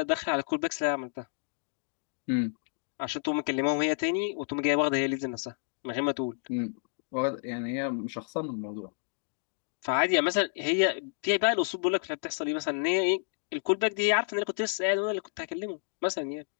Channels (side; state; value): right; silent; digital silence